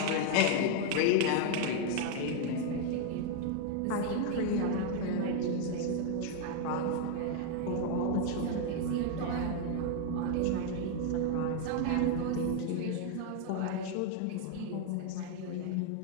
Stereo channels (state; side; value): different; both; correlation 0.00